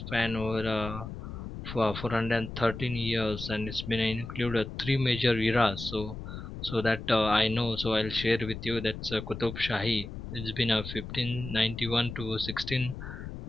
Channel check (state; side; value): noise; left; rumble, 9 dB below the sound